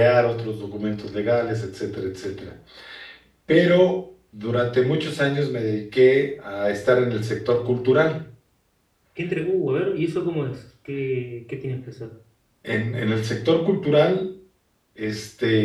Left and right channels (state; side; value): identical; both; correlation 1.00